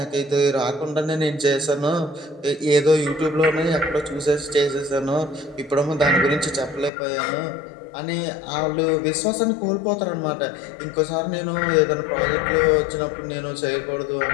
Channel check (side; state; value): right; drops out; at 6.9 s